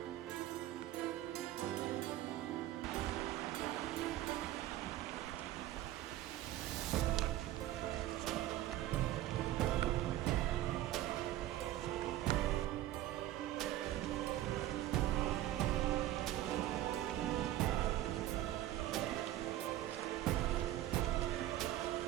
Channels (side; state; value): left; quieter; 13.9 dB